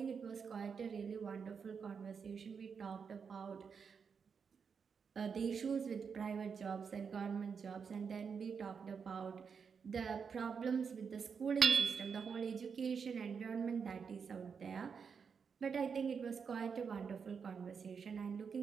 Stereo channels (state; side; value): quieter; left; 6.1 dB